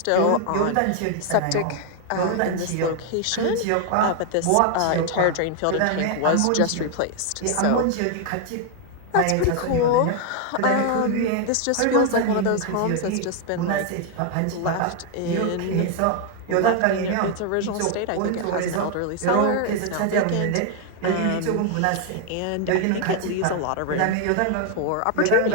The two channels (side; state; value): both; different; correlation 0.00